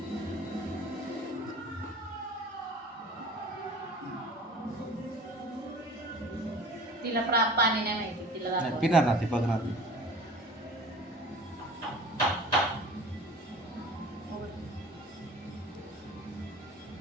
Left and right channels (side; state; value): both; normal; correlation 0.43